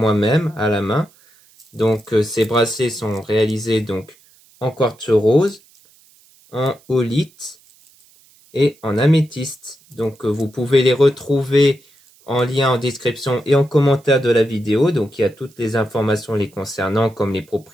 à la main. Donc ces bracelets sont réalisés donc en quartz rose, en holite et en améthyste. Donc vous pouvez les retrouver en lien en description et en commentaire de la vidéo. Donc il y a toutes les informations les concernant comme les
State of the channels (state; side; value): noise; right; hiss, 30 dB below the sound